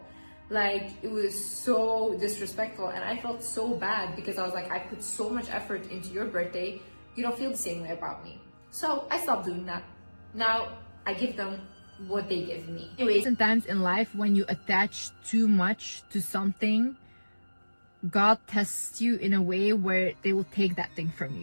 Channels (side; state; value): both; inverted; correlation -1.00